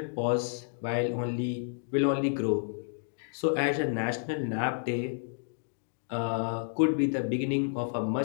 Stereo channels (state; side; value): silent; right; digital silence